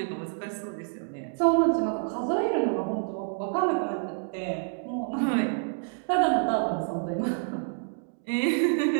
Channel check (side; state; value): left; silent; 59 dB below the other